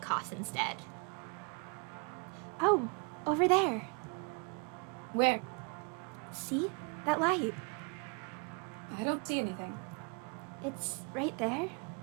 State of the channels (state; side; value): quieter; left; 34.3 dB